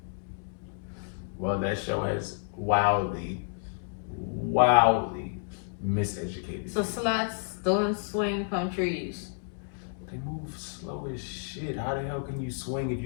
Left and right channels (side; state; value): right; silent; 57 dB below the other